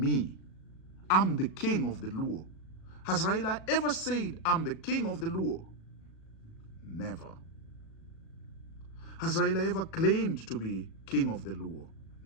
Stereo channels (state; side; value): late; right; 37 ms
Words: I'm the king of the Luo? Has Raila ever said, I'm the king of the Luo? Never. Has Raila ever claimed to be king of the Luo?